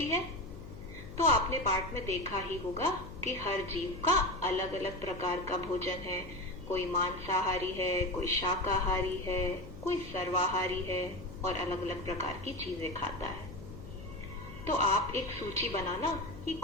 है? तो आपने पाठ में देखा ही होगा कि हर जीव का अलग अलग प्रकार का भोजन है। कोई मांसाहारी है, कोई शाकाहारी है, कोई सर्वाहारी है और अलग अलग प्रकार की चीजें खाता है। तो आप एक सूची बनाना कि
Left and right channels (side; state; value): left; noise; hum, 14 dB below the sound